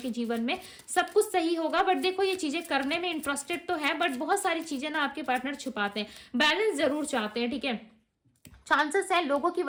जीवन में सब कुछ सही होगा। बट देखो, ये चीजें करने में इंटरेस्टेड तो है, बट बहुत सारी चीजें ना आपके पार्टनर छुपाते हैं, बैलेंस जरूर चाहते हैं, ठीक है। चांसेस है लोगों की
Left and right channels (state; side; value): identical; both; correlation 1.00